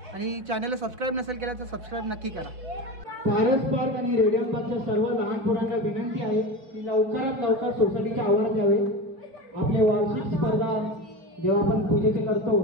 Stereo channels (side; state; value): left; late; 4.3 ms